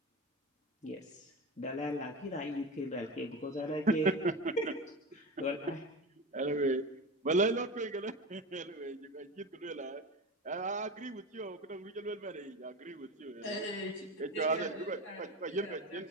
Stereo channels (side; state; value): both; normal; correlation 0.26